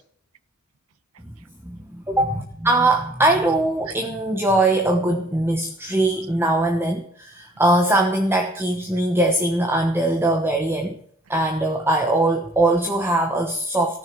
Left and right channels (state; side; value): normal; both; correlation 0.56